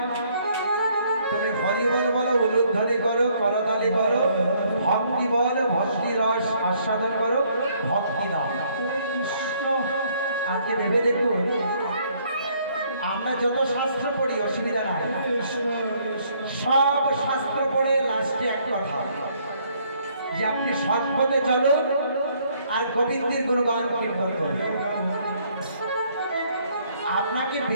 তুমি হরি বল বলো, উলুধ্বনি করো, করতালি করো, ভক্তি বল, ভক্তি রস আস্বাদন করো, ভক্তি দাও। আজকে ভেবে দেখুন, আমরা যত শাস্ত্র পড়ি অসুবিধা নাই, সব শাস্ত্র পড়ে লাস্টে এক কথা যে আপনি সৎ পথে চলুন আর গোবিন্দের গুণগান কীর্তন করুন। আপনাকে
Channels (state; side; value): inverted; both; correlation -0.66